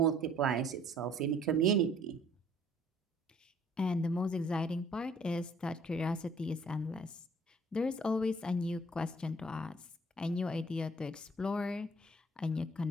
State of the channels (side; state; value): both; normal; correlation 0.58